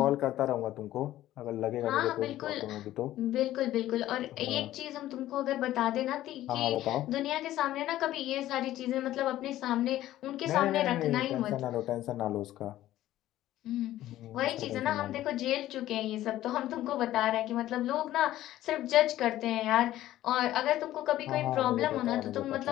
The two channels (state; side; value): quieter; right; 14.1 dB